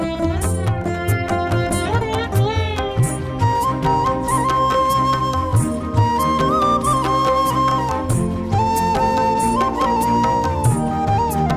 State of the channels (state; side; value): identical; both; correlation 1.00